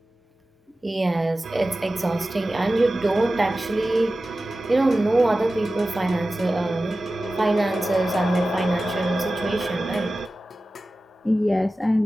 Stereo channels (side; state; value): both; normal; correlation 0.95